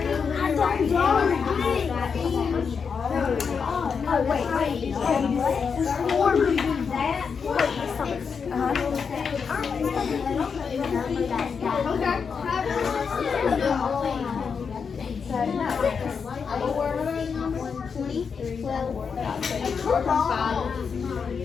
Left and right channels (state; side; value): quieter; right; 6.0 dB